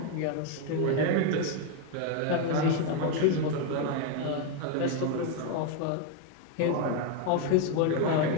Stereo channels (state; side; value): different; both; correlation 0.01